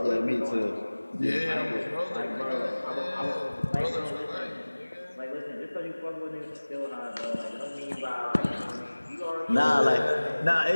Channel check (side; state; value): both; inverted; correlation -1.00